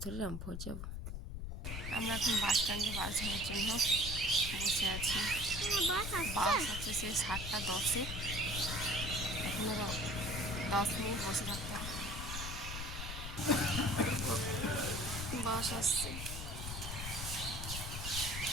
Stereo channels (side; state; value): left; noise; rumble, 6 dB below the sound